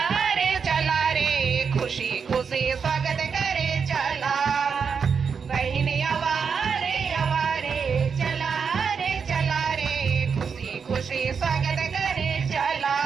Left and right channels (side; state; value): left; quieter; 6.1 dB